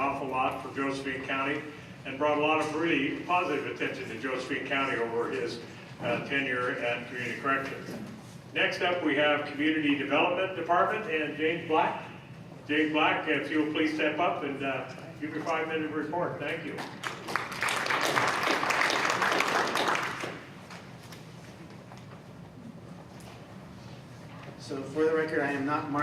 lot for Josephine County, and brought a lot of really positive attention to Josephine County over his tenure at Community Corrections. Next up, we have Community Development Department and James Black. James Black, if you'll please step up and give your 5-minute report. Thank you. So for the record, I am not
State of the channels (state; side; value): identical; both; correlation 1.00